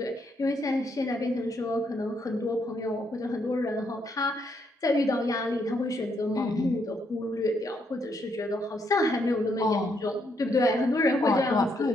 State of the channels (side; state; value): both; normal; correlation 0.75